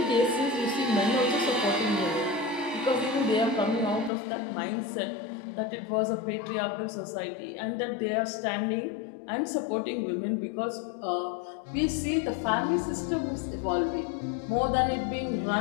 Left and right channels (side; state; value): right; drops out; at 4.1 s